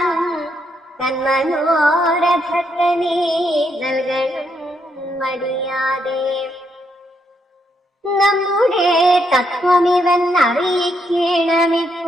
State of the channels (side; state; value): both; normal; correlation 0.77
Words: തന്മനോരഥത്തെ നീ നൽകണം മടിയാതെ. നമ്മുടെ തത്വമിവൻ